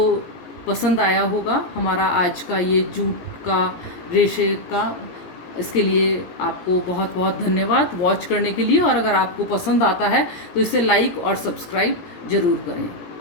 पसंद आया होगा हमारा आज का ये जूट का रेशे का। इसके लिए आपको बहुत बहुत धन्यवाद वॉच करने के लिए, और अगर आपको पसंद आता है तो इसे लाइक और सब्सक्राइब ज़रूर करें।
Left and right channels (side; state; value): right; late; 17 ms